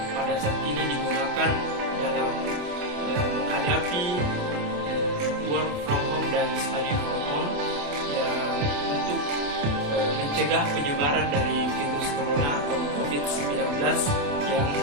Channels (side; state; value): left; late; 28 ms